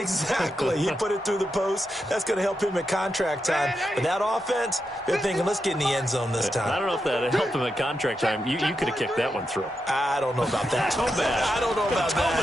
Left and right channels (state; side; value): normal; both; correlation 0.86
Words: He put it through the post. That's going to help him at contract time. But that offense, they're thinking, let's get in the end zone this time. I don't know if that helped him at contract time. You could have kicked that one through. I don't know about that. Toe bash. I don't know about